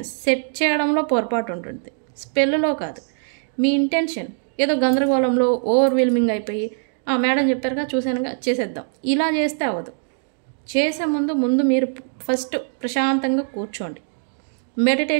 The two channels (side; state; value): left; silent; digital silence